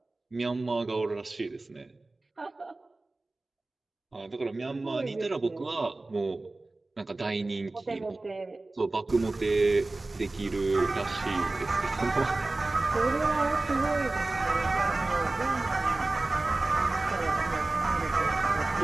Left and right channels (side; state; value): left; quieter; 3.1 dB